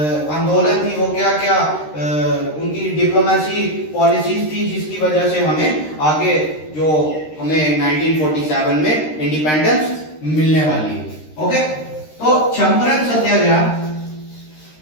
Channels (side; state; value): right; late; 13 ms